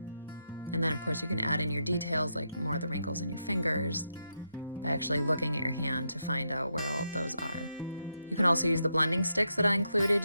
And then of course you can add in your details like more of the wrinkles in your fingers by actually looking at your hand to find out where all of those are. You can also use the blending sticks that I included.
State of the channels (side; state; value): both; inverted; correlation -0.83